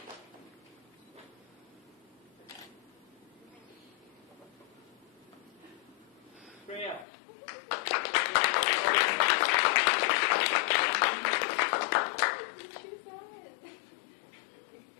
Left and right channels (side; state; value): right; drops out; at 7.1 s